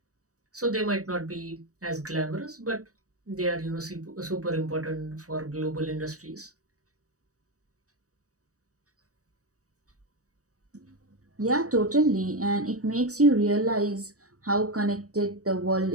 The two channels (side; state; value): left; late; 0.66 ms